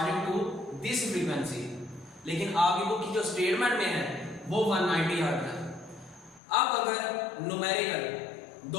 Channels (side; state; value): right; drops out; at 6.4 s